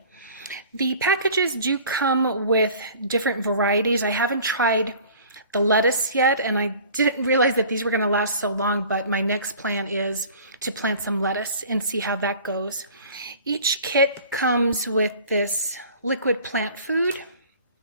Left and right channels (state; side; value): inverted; both; correlation -0.46